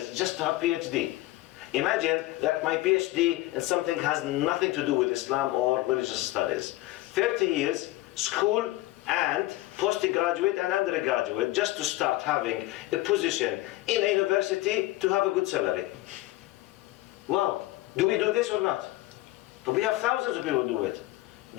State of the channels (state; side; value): quieter; right; 17.6 dB